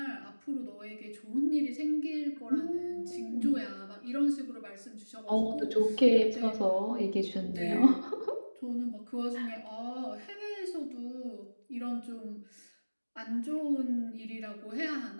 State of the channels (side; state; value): both; inverted; correlation -1.00